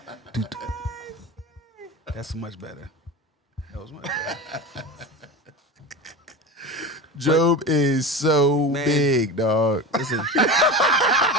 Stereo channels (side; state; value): both; normal; correlation 0.27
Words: That's much better. That was much better. Job is so Man. big, dog. Listen,